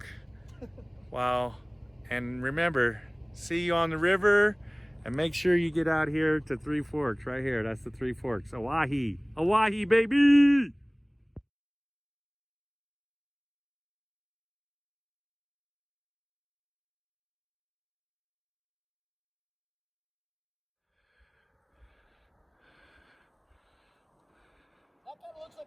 Wow. And remember, see you on the river, and make sure you get out here to Three Forks right here. That's the Three Forks. Owyhee. Owyhee, baby! That kind of looks like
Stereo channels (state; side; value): identical; both; correlation 1.00